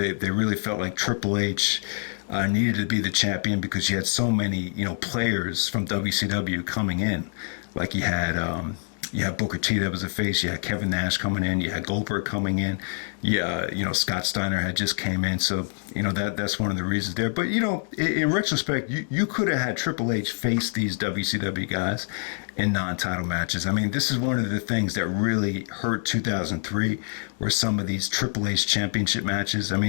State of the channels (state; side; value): silent; right; 61 dB below the other